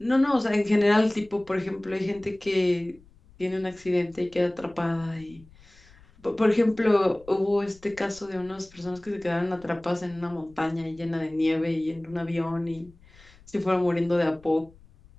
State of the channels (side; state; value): left; noise; rumble, 26 dB below the sound